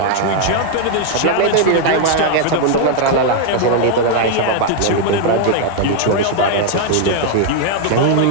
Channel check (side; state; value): both; different; correlation 0.00